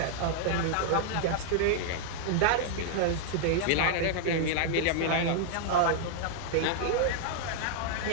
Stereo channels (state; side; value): different; both; correlation -0.01